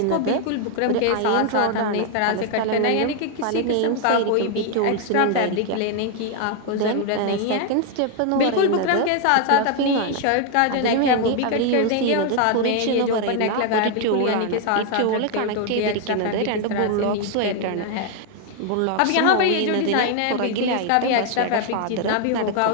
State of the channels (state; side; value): different; both; correlation 0.00